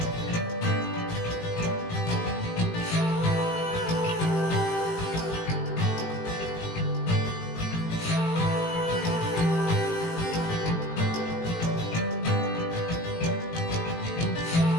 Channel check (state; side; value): late; right; 18 ms